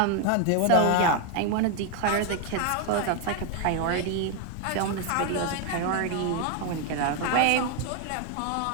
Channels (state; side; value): different; both; correlation 0.01